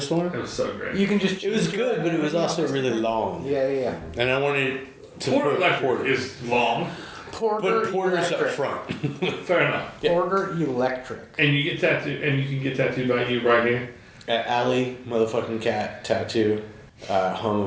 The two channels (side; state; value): both; identical; correlation 1.00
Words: storm. It was so great. You can just. It was good, but it was also really long. Yeah. And I wanted to Porter put Electric is long. Porter. Put Porter's up Electric. front. Fair enough. Porter Electric. And you get tattooed, and you can get tattooed by you right here. At Alley motherfucking cat tattoo, home